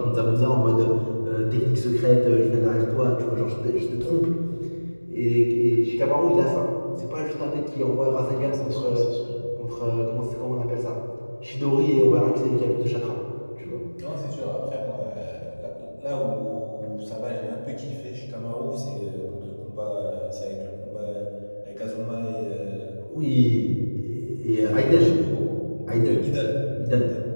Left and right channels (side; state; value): both; inverted; correlation -1.00